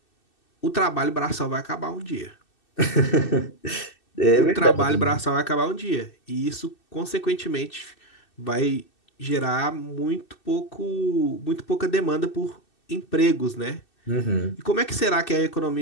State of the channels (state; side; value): late; right; 2.6 ms